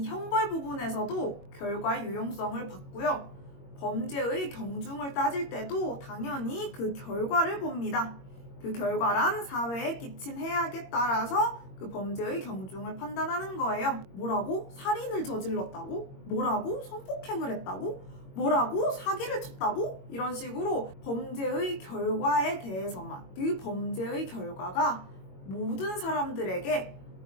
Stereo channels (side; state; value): right; late; 21 ms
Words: 형벌 부분에서도 결과의 유용성을 봤고요. 범죄의 경중을 따질 때도 당연히 그 결과를 봅니다. 그 결과란 사회에 끼친 해악에 따라서 그 범죄의 경중을 판단하는 거예요. 뭐라고? 살인을 저질렀다고? 뭐라고? 성폭행을 했다고? 뭐라고? 사기를 쳤다고? 이런 식으로 범죄의 결과에 대해서만, 그 범죄의 결과가 모든 사람들에게